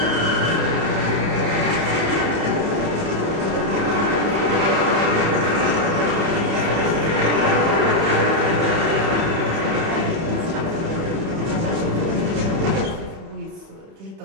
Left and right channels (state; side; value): late; left; 31 ms